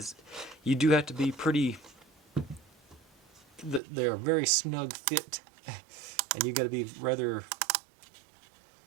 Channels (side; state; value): left; drops out; at 3.8 s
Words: you do have to be pretty. They are very snug fit, and you got to be rather